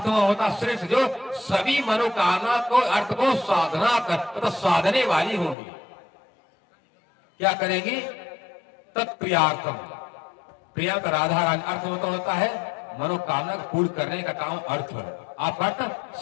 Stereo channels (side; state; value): right; drops out; at 5.6 s